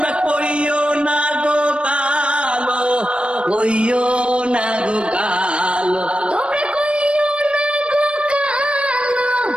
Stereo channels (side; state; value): left; late; 0.058 ms